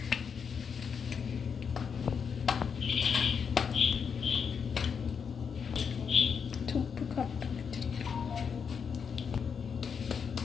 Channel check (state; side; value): quieter; right; 6.5 dB